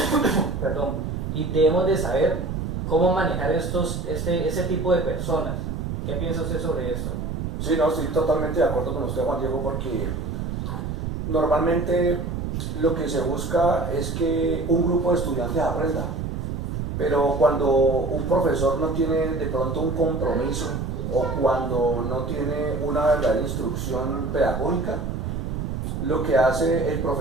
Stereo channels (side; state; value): right; noise; rumble, 3 dB below the sound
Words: perdón, y debemos de saber cómo manejar este tipo de personas. ¿Qué piensa usted sobre esto? Sí, no, estoy totalmente de acuerdo con usted, Juan Diego, porque normalmente lo que se busca es que un grupo de estudiantes aprenda, pero cuando un profesor no tiene de pronto un compromiso o cuando no tiene una verdadera instrucción pedagógica, lo que hace el